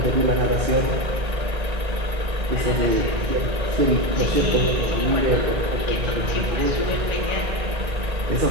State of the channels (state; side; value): late; left; 1.9 ms